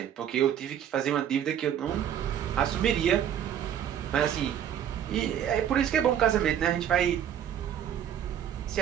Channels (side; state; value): left; quieter; 9.6 dB